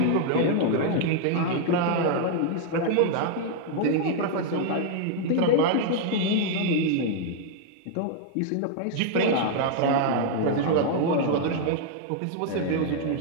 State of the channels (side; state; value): both; different; correlation 0.00